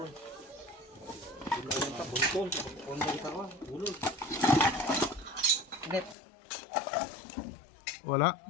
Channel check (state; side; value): drops out; right; at 6.2 s